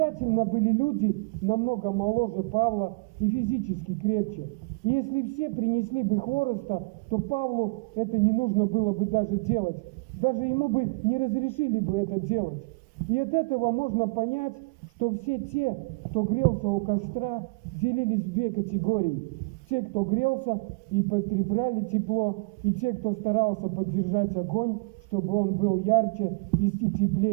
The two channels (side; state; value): left; quieter; 30.5 dB